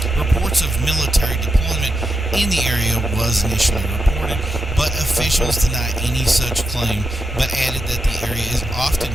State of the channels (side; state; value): both; normal; correlation 0.87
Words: Reports of military deployment in the area was initially reported, but officials deny any such claim, but added that the area is often